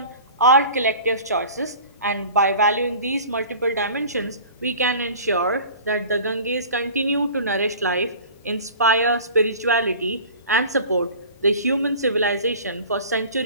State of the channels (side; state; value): both; inverted; correlation -0.42